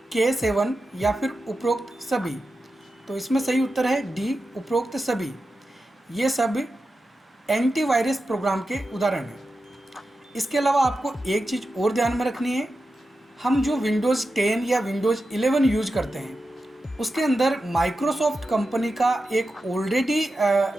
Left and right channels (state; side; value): normal; both; correlation 0.91